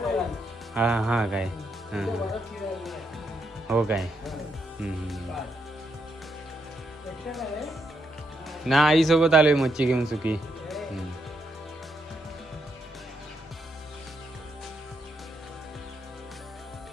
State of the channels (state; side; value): normal; both; correlation 0.79